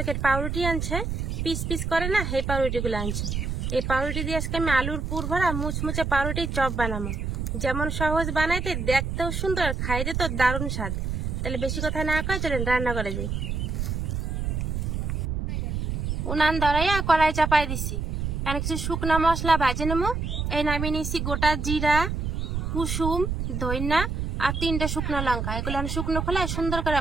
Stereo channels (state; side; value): noise; right; rumble, 2 dB below the sound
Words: পাউরুটি আনছে, পিস পিস করে না, এই পাউরুটিগুলো আনছে। এই পাউরুটি দিয়ে আজকে আমি আলুর পুর ভরা মুচমুচে পাউরুটির চপ বানাবো। যেমন সহজ বানাইতে, দেখতেও সুন্দর, খাইতে তো দারুণ স্বাদ। তাহলে বেশি কথা না কয়ে চলেন রান্না করে যাই। উনান ধরাইয়া কড়াই চাপাই দিছি। এখানে কিছু শুকনো মশলা ভাজে নেবো। এই নামিয়ে নিয়েছি গোটা জিরা, কুসুম, ধইনা আর 3টে শুকনো লঙ্কা। এগুলো আমি শুকনো খোলায় সুন্দর করে